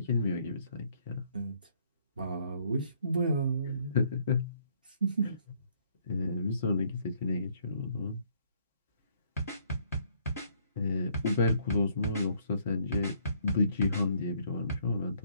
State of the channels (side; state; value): both; inverted; correlation -0.66